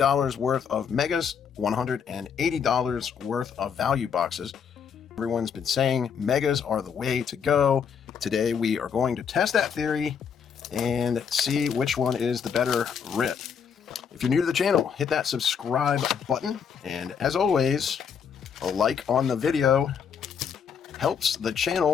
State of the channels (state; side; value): quieter; right; 7.1 dB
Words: worth of megas, $180 worth of value boxes. Everyone's been saying megas are the way to go. Today we are going to test that theory and see which one is the better rip. If you're new to the channel, hit that subscribe button, and as always, a like on the video helps the